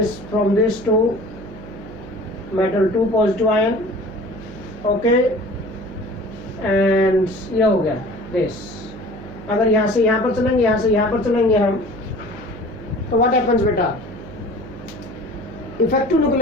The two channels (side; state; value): right; noise; hum, 14 dB below the sound